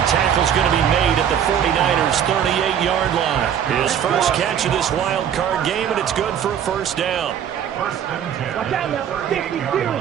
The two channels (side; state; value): left; quieter; 9.0 dB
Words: tackle's going to be made at the 49ers' 38-yard line. His first catch of this wild card game, and it's good for a 1st down. Watch out now. 52.